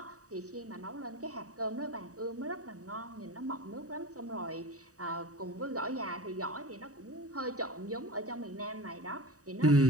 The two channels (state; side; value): late; left; 0.66 ms